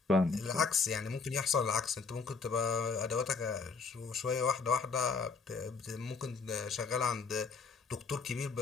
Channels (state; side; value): quieter; right; 5.0 dB